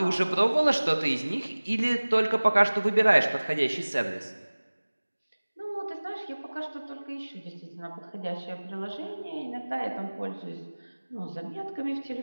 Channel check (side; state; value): both; inverted; correlation -1.00